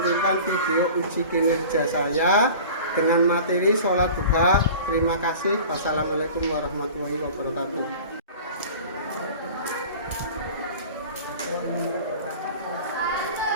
video uji kinerja saya dengan materi sholat duha. Terima kasih. Wassalamualaikum warahmatullahi wabarakatuh.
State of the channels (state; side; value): inverted; both; correlation -0.40